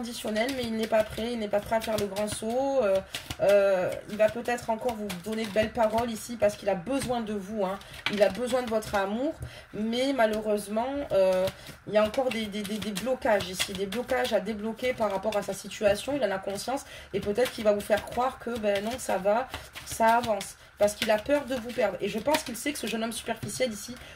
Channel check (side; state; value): both; identical; correlation 1.00